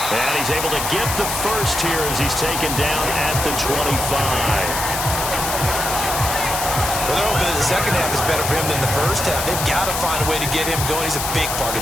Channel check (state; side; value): noise; left; hiss, 3 dB below the sound